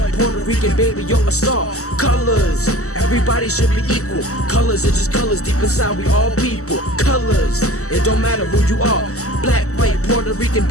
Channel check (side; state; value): right; late; 0.64 ms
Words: Puerto Rican, baby, you're a star. Colors, everybody should be equal. Colors are just colors, deep inside we all people. Colors, it don't matter who you are. Black, white, Puerto Rican,